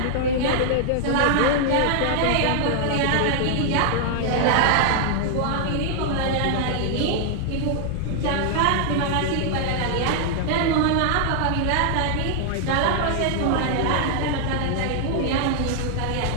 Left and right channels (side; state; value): both; different; correlation 0.00